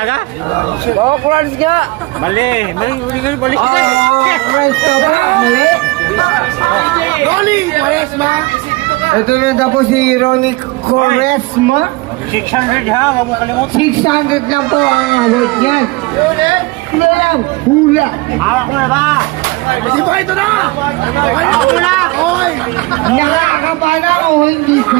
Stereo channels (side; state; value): left; quieter; 23.1 dB